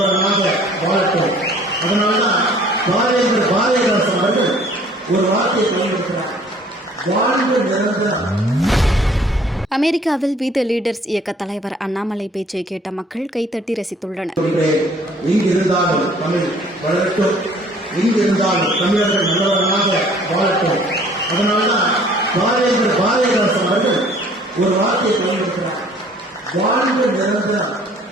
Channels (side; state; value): both; normal; correlation 0.55